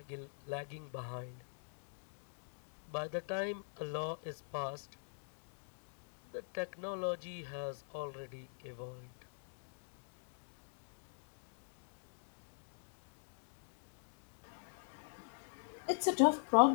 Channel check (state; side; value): silent; right; digital silence